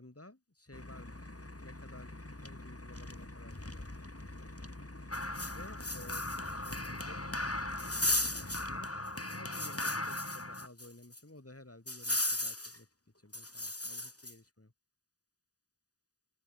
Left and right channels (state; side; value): late; right; 0.67 ms